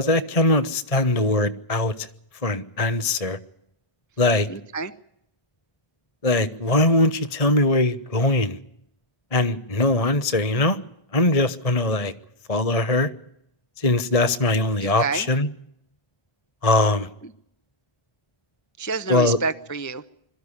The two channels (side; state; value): right; late; 1.6 ms